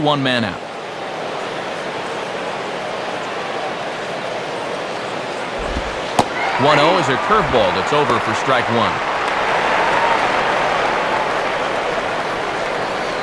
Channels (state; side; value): identical; both; correlation 1.00